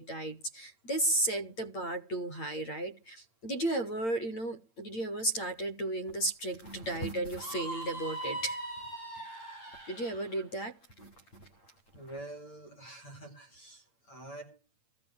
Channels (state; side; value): late; right; 8.8 ms